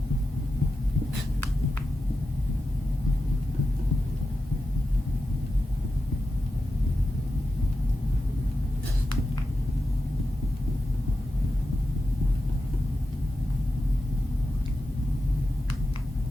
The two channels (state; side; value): normal; both; correlation 0.90